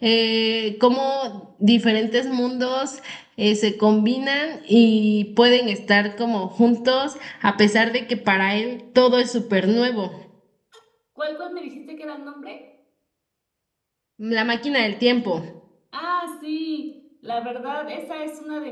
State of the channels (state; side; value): identical; both; correlation 1.00